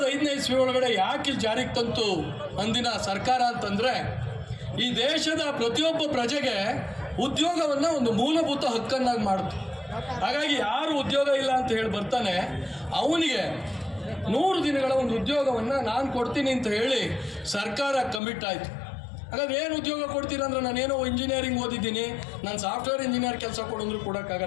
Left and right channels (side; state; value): right; drops out; at 18.2 s